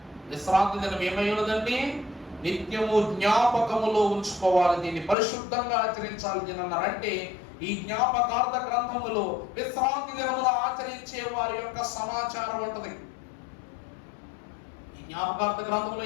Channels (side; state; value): right; drops out; at 5.2 s